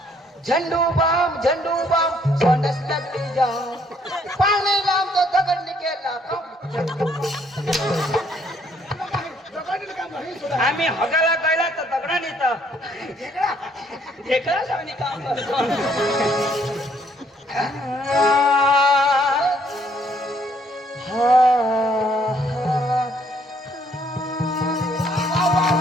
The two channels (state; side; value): normal; both; correlation 0.66